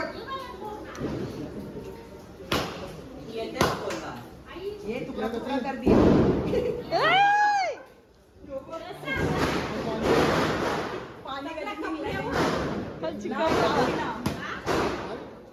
ये तुकडा तुकडा कर दिए पाणी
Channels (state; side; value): identical; both; correlation 1.00